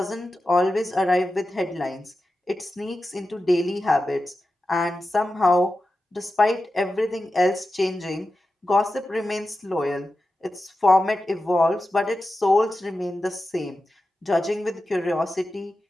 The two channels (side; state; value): both; normal; correlation 0.92